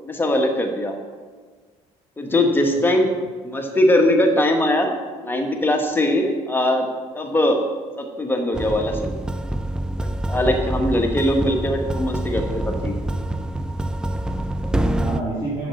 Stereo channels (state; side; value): normal; both; correlation 0.73